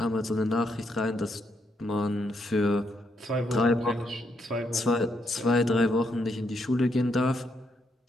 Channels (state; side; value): normal; both; correlation 0.77